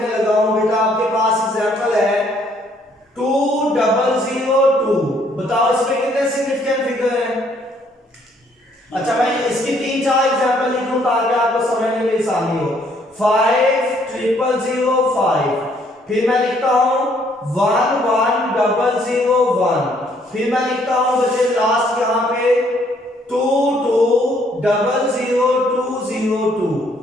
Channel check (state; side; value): normal; both; correlation 0.66